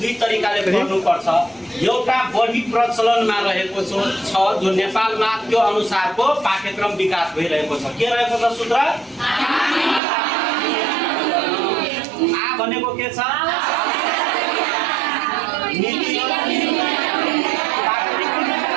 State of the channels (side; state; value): left; drops out; at 10.0 s